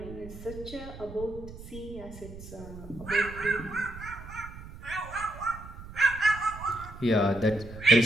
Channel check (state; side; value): noise; right; rumble, 14 dB below the sound